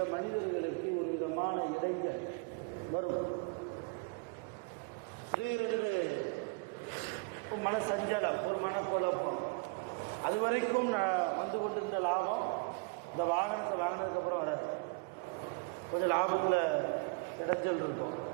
மனிதர்களுக்கு ஒரு விதமான இடைஞ்சல் வரும். திடீரென்று ஒரு மனசஞ்சலம், ஒரு மனக்குழப்பம். அது வரைக்கும் வந்து கொண்டிருந்த லாபம் இந்த வாகனத்தை வாங்கினதுக்கப்புறம் வராது. கொஞ்சம் லாபத்தில் இடைஞ்சல் இருக்கும்,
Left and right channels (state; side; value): quieter; left; 30.8 dB